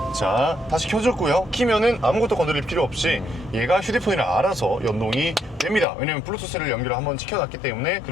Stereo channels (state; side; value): drops out; right; at 5.9 s